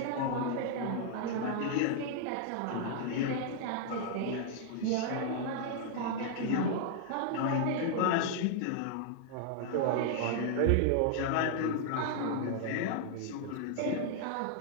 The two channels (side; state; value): both; different; correlation 0.00